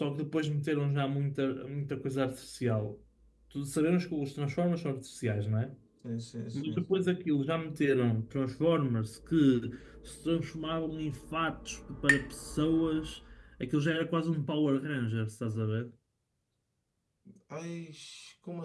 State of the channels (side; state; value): both; identical; correlation 1.00